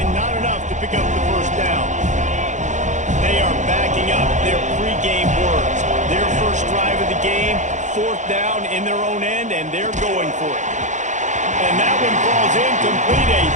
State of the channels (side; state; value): left; late; 0.35 ms